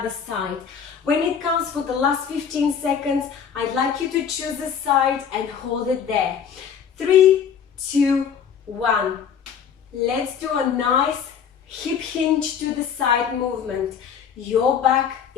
side. When it comes for the last 15 seconds, I'd like you to choose a side and hold it there. 3, 2, 1. Let's do a nice hip hinge to the side movement. Your back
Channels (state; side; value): quieter; right; 7.5 dB